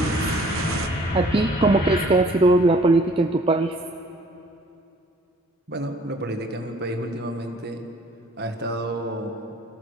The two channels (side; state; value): both; normal; correlation 0.57